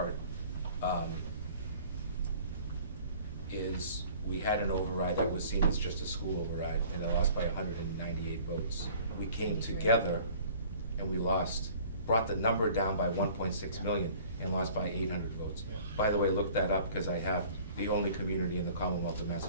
is we had an override that was seen as just a school override, and it lost by 198 votes. We came together and we brought the number down by 1.6 million and lost by 800 votes. By the way, look that up, because I have the only community in the Commonwealth of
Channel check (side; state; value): both; inverted; correlation -0.50